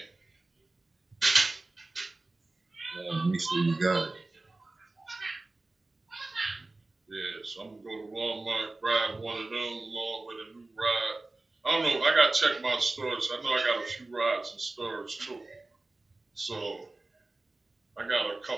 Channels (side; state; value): left; quieter; 3.1 dB